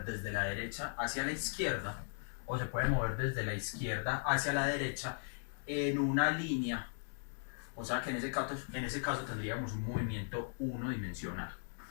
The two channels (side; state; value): right; silent; 53 dB below the other